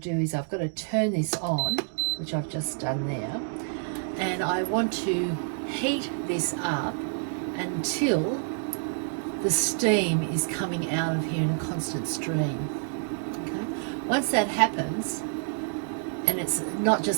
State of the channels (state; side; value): silent; left; 59 dB below the other